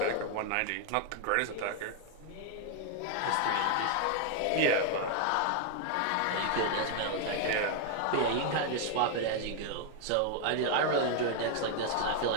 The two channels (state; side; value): different; both; correlation 0.00